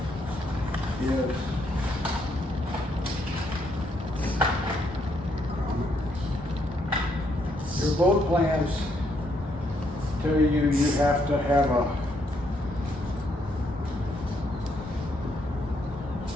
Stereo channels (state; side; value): normal; both; correlation 0.74